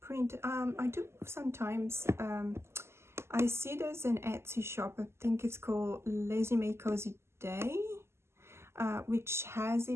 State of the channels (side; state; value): left; late; 0.12 ms